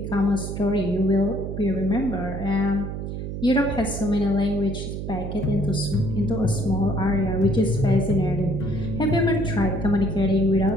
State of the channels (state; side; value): noise; right; hum, 6 dB below the sound